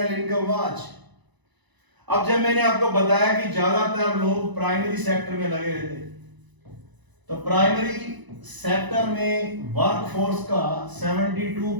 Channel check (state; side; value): late; left; 1.0 ms